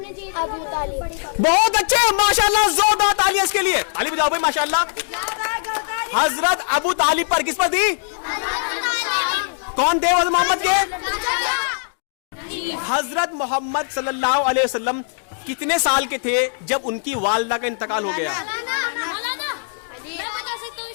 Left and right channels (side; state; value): right; silent; digital silence